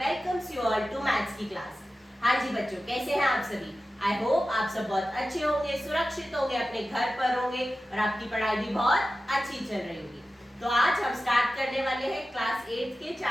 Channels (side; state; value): both; normal; correlation 0.94